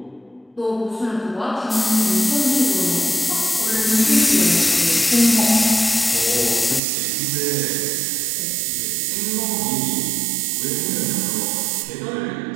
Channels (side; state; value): left; drops out; at 6.8 s